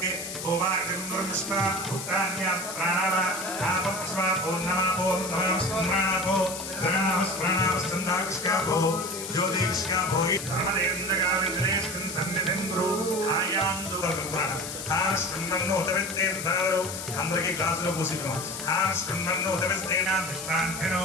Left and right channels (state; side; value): noise; left; hiss, 8 dB below the sound